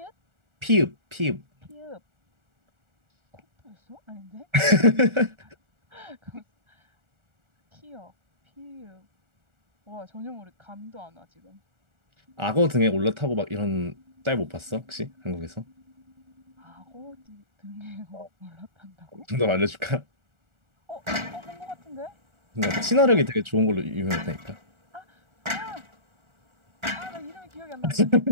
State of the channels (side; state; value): left; late; 1.4 ms